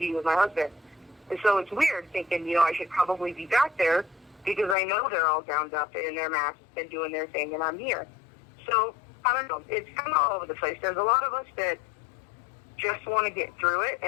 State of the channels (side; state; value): right; drops out; at 4.8 s